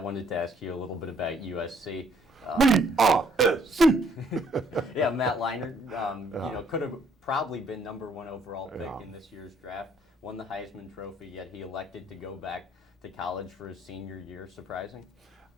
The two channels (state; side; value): normal; both; correlation 0.64